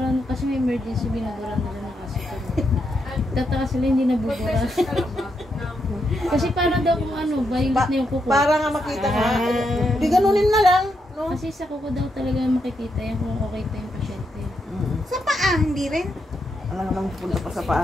kasi may emergency, binuburan nila na kasi. Tataka sila hindi nabubura. Kasi para daw kung ano, violet na yung kuko. Para nga makita nga. Di ganunin na lang. No? Kasi sa kuko daw talaga makikita yan kung okay pa yung pasyente. Sa paa, hindi rin. Alam nga nang punta pa sa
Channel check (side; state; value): both; normal; correlation 0.81